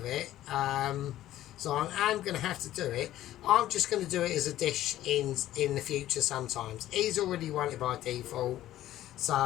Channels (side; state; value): right; quieter; 13.7 dB